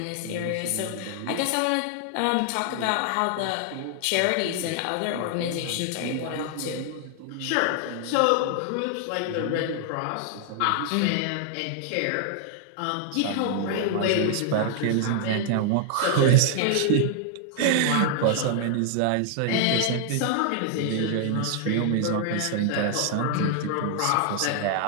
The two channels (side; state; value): both; different; correlation 0.00